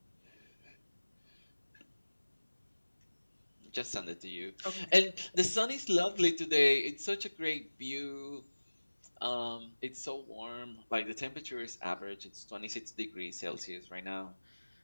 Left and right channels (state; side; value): inverted; both; correlation -1.00